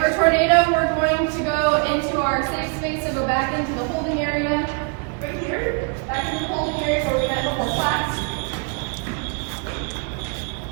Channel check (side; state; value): left; quieter; 35.8 dB